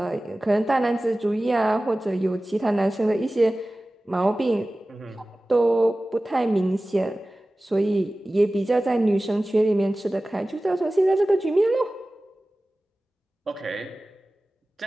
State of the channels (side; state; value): both; normal; correlation 0.97